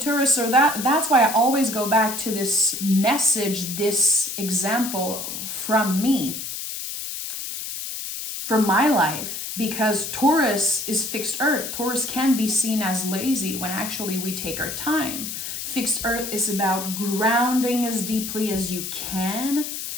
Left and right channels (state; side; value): noise; left; hiss, 6 dB below the sound